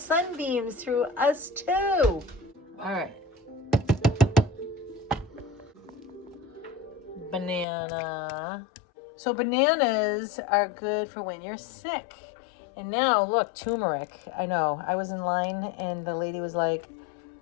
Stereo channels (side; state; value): right; drops out; at 7.7 s